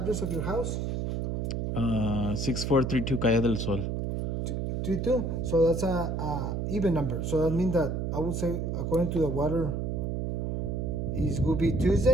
of your house? 6432 Calle del Sol. 32. So that's a even number. So that means that I would say according to the water, it will be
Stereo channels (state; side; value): noise; right; hum, 1 dB below the sound